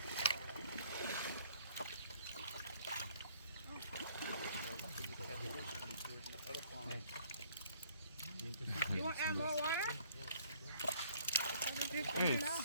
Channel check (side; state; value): both; inverted; correlation -0.60